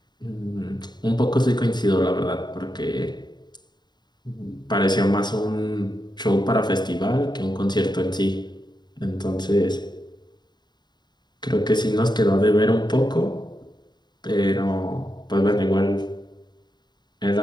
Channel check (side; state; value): right; late; 0.21 ms